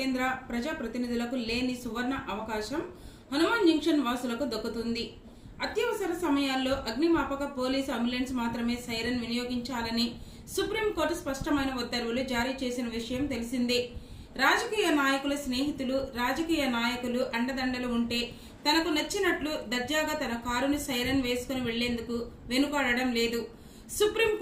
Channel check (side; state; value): both; identical; correlation 1.00